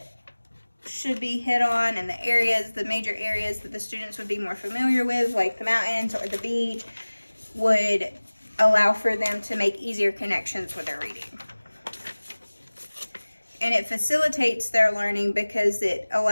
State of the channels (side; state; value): both; inverted; correlation -1.00